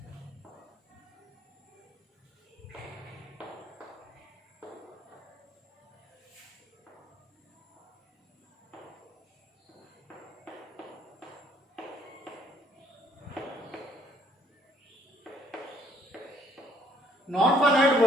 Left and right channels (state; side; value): normal; both; correlation 0.63